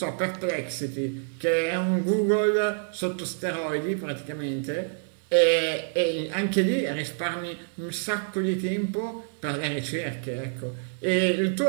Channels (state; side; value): silent; left; digital silence